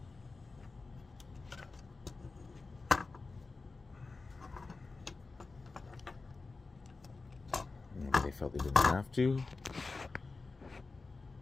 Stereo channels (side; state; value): right; quieter; 3.9 dB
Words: Maybe they felt they didn't have to.